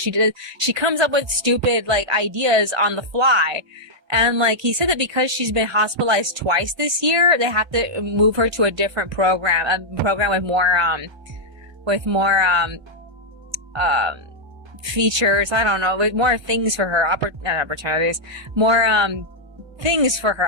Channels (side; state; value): left; late; 1.3 ms